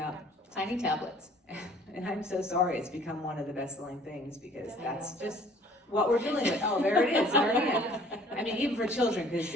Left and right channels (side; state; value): both; normal; correlation 0.55